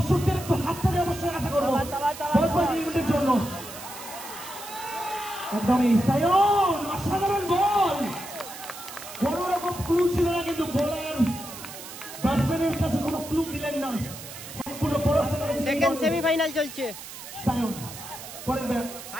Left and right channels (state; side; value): noise; right; hiss, 13 dB below the sound